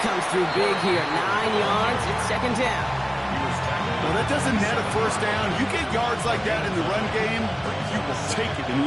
through big here. 9 yards, it's second down. Well, that doesn't net a first down. You get yards like that in the run game, you will take it in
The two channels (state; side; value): identical; both; correlation 1.00